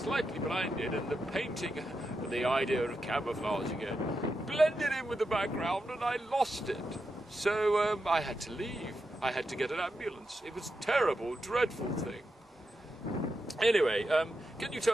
blinded, and the painting, the idea of camouflage again, blended in with the background, and I lost it. So I had to leave. I had to get an ambulance. It was a terrible, dreadful thing. Anyway, can you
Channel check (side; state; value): both; normal; correlation 0.87